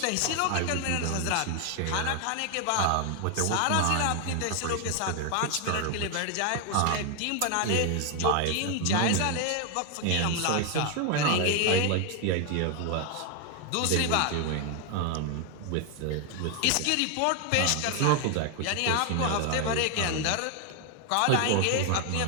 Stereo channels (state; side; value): different; both; correlation 0.01